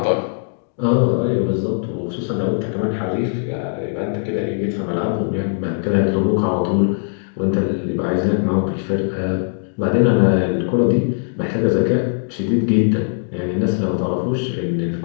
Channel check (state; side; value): silent; right; digital silence